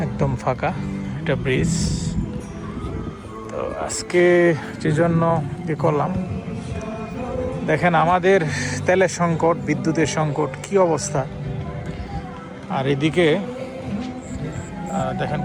একদম ফাঁকা। এটা ব্রিজ। তো আজকে যে জন্য কি করলাম, দেখেন আমাদের তেলের সংকট, বিদ্যুতের সংকট, কি অবস্থা। আর এদিকে দেখেন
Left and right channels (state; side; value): identical; both; correlation 1.00